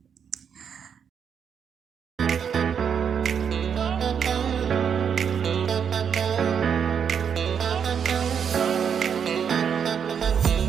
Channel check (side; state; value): left; quieter; 7.4 dB